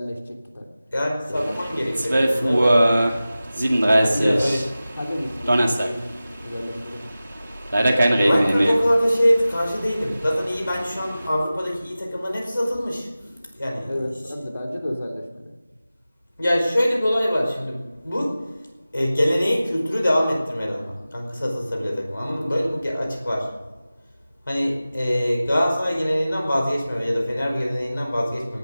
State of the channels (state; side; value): inverted; both; correlation -0.96